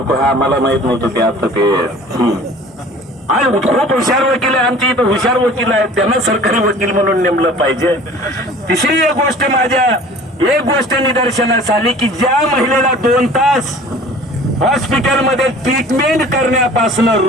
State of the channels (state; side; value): normal; both; correlation 0.46